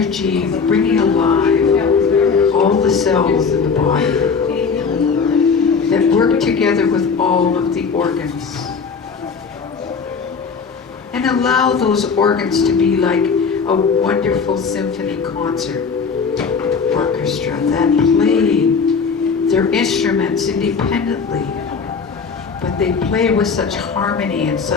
bringing alive all the cells in the body that work together with all of the organs. And allow those organs to be like a wonderful symphony concert orchestra that play their instruments independently, but they play with such harmony and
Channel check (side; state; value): right; quieter; 5.5 dB